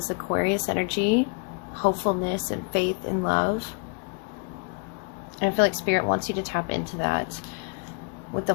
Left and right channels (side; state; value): right; quieter; 37.1 dB